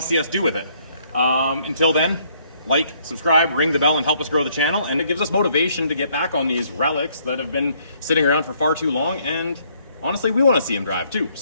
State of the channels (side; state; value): both; inverted; correlation -0.67